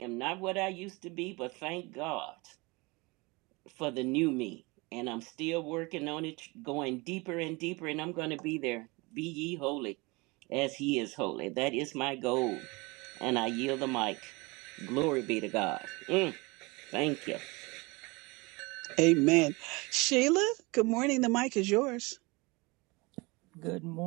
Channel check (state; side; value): quieter; left; 25.6 dB